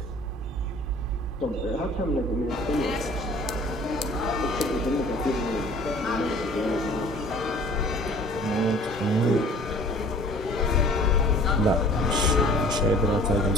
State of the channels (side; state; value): both; normal; correlation 0.50